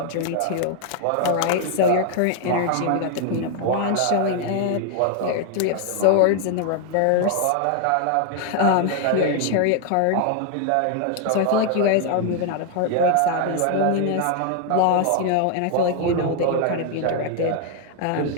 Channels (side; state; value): both; different; correlation 0.00